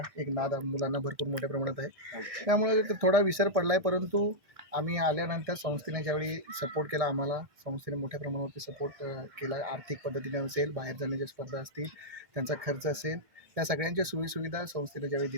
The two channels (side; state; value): left; late; 1.6 ms